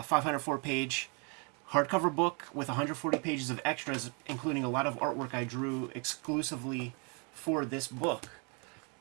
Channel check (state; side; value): quieter; left; 34.5 dB